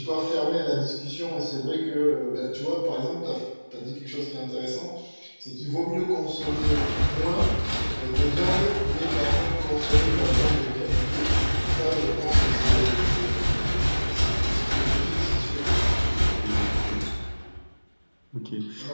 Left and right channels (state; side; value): inverted; both; correlation -1.00